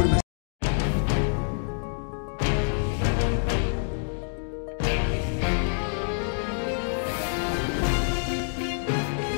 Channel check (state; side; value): silent; right; digital silence